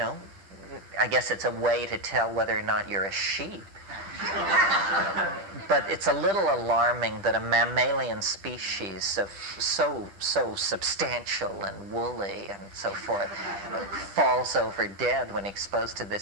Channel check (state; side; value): late; left; 10 ms